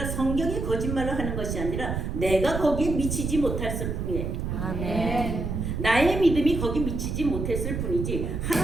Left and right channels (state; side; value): noise; right; rumble, 3 dB below the sound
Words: 성경이 거짓말을 하는 것이 아니라 내가 거기에 미치지 못했을 뿐이에요. 아멘. 나의 믿음이 거기 미치지 못했을 뿐이지